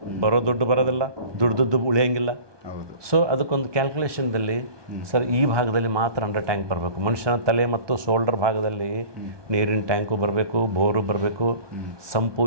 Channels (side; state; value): left; late; 1.2 ms